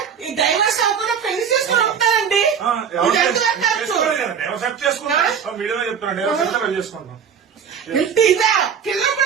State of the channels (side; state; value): left; quieter; 7.3 dB